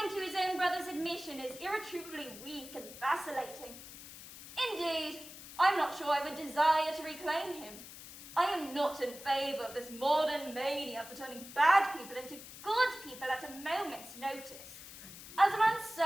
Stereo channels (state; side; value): noise; left; hiss, 14 dB below the sound